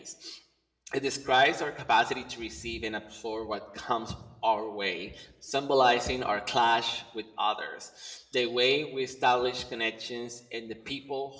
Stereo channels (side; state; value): both; identical; correlation 1.00